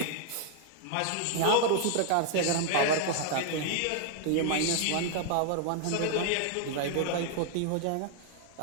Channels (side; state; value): both; different; correlation 0.00